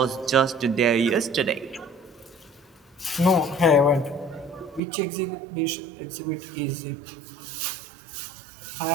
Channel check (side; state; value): left; drops out; at 4.8 s